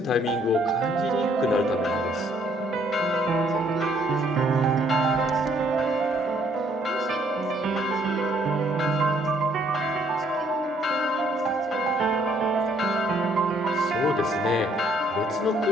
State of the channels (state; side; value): normal; both; correlation 0.66